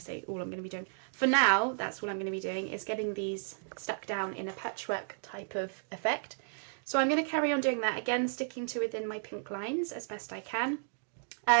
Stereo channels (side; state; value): left; silent; digital silence